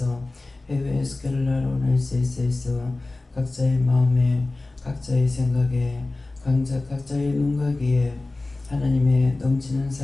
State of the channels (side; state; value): right; quieter; 3.1 dB